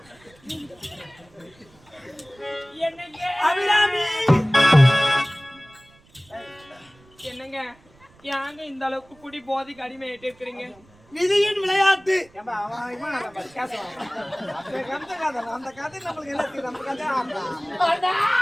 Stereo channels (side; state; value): right; noise; rumble, 29 dB below the sound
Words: என்னங்க அபிராமி என்னங்க யாங்க இந்த அளவுக்கு குடி போதைக்கு அடிமையாயிட்டு இருக்கிறீங்க? விதியின் விளையாட்டு. ஏம்பா அவன் இவன் நம்ம பேசுவான். அந்த கதை கதை அந்த கதை நமக்கு எல்லாம் தெரியும். நம்ம கதை ஆமா. அண்ணா